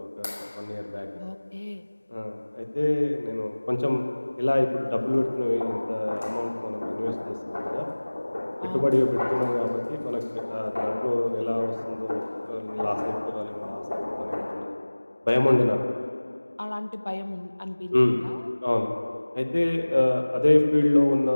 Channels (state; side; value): inverted; both; correlation -1.00